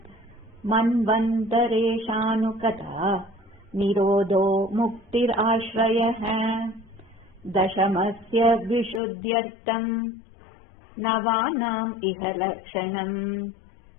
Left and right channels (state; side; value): drops out; right; at 9.0 s